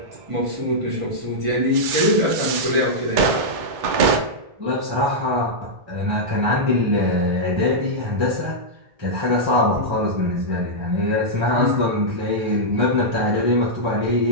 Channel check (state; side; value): late; left; 2.2 ms